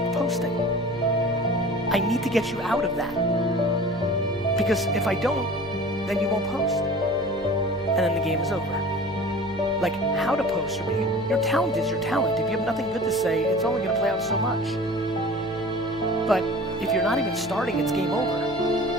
posting. I need to get you out of that. Because if I don't, then you won't post. And then the game is over. Like, how to post, your talent is your talent. If you have nothing good to say, it's only gonna play out so much. But if you're not even starting, it's game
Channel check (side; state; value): right; noise; hum, 17 dB below the sound